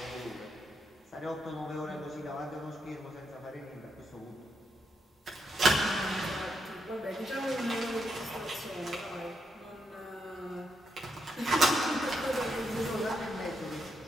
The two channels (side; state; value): both; normal; correlation 0.81